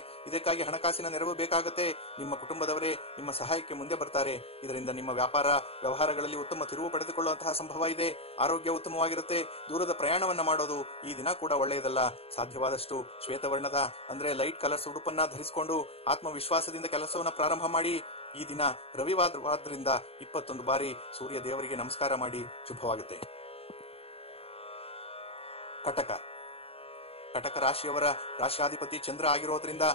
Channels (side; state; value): right; late; 0.28 ms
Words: ಇದಕ್ಕಾಗಿ ಹಣಕಾಸಿನ ನೆರವು ಬೇಕಾಗುತ್ತೆ. ನಿಮ್ಮ ಕುಟುಂಬದವರೇ ನಿಮ್ಮ ಸಹಾಯಕ್ಕೆ ಮುಂದೆ ಬರ್ತಾರೆ. ಇದರಿಂದ ನಿಮ್ಮ ವ್ಯಾಪಾರ ವ್ಯವಹಾರಗಳಲ್ಲಿ ಉತ್ತಮ ತಿರುವು ಪಡೆದುಕೊಳ್ಳುವಂತಹ ಸಂಭವ ಇದೆ. ಆರೋಗ್ಯ ಉತ್ತಮವಾಗಿರುತ್ತೆ. ದೂರದ ಪ್ರಯಾಣವನ್ನ ಮಾಡೋದು ಈ ದಿನ ಕೂಡ ಒಳ್ಳೆಯದಲ್ಲ. ಸಾಧ್ಯವಾದಷ್ಟು ಶ್ವೇತವರ್ಣದ ಅಂದ್ರೆ ಲೈಟ್ ಕಲರ್ಸ್ ಉಡುಪನ್ನ ಧರಿಸಿಕೊಂಡು ಆತ್ಮವಿಶ್ವಾಸದಿಂದ ಕೆಲಸವನ್ನ ಪ್ರಾರಂಭ ಮಾಡಿ. ಈ ದಿನ ರವಿವಾರದಿಂದ 21 ಬಾರಿ ಸೂರ್ಯ ದೇವರಿಗೆ ನಮಸ್ಕಾರ ಮಾಡಿ. ಶುಭವಾಗುತ್ತೆ. ಕಟಕ ರಾಶಿಯವರ ರಾಶಿಯಾಧಿಪತಿ ಚಂದ್ರ ಆಗಿರೋದ್ರಿಂದ